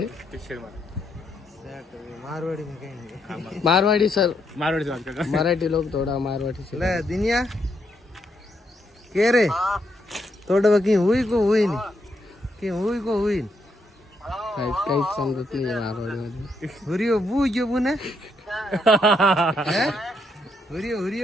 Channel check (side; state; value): both; normal; correlation 0.77